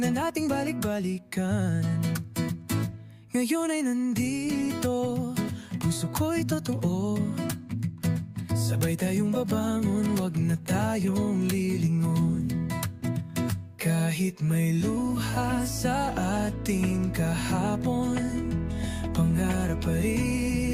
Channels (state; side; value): identical; both; correlation 1.00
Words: nating balik-balikan. Ngayon ay nandito, puso ko'y totoo. Sabay tayong babangon, wag na tayong lilingon. Kahit may luha sa ating kahapon, pangarap pa